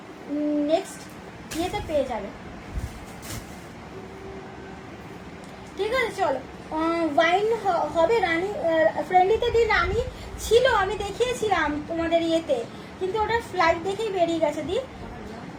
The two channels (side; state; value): both; identical; correlation 1.00